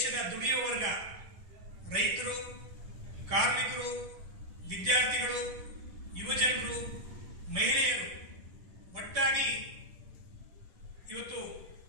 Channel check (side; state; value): left; late; 10 ms